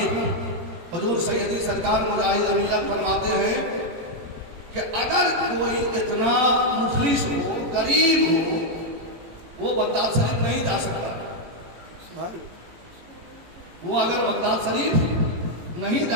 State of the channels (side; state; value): left; late; 18 ms